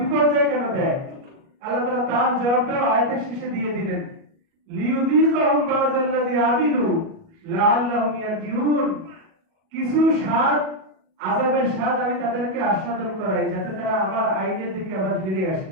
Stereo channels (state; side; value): late; left; 37 ms